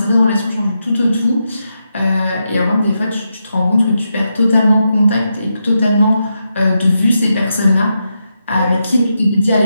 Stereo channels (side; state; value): both; inverted; correlation -0.85